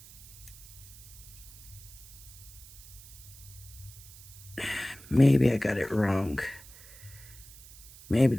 Maybe I got it wrong. Maybe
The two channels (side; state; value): right; noise; hiss, 18 dB below the sound